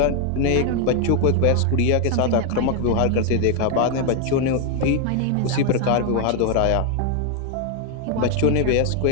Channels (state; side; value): different; both; correlation 0.00